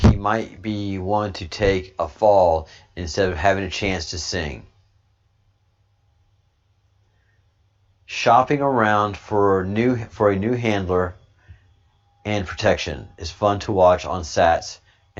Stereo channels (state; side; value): identical; both; correlation 1.00